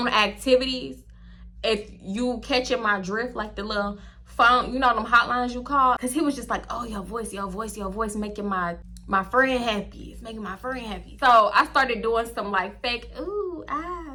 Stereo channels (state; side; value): identical; both; correlation 1.00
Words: activities. If you catching my drift, like the little phone, you know them hotlines you call? Cause he was just like, oh, your voice making my friend happy. It's making my friend happy. So I started doing some like fake ooh